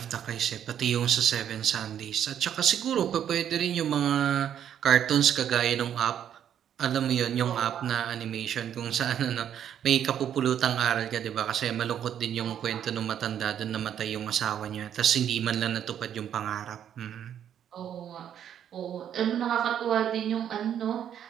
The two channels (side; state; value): left; quieter; 9.6 dB